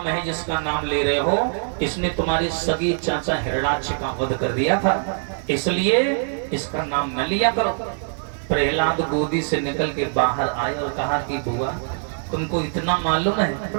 है जिसका नाम ले रहे हो, इसने तुम्हारे सगे चाचा हिरण्याक्ष का वध कर दिया था, इसलिए इसका नाम न लिया करो। प्रहलाद गोदी से निकल के बाहर आए और कहा कि बुआ तुमको इतना मालूम है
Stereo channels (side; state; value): left; silent; digital silence